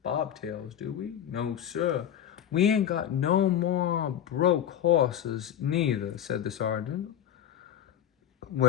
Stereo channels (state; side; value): quieter; right; 10.1 dB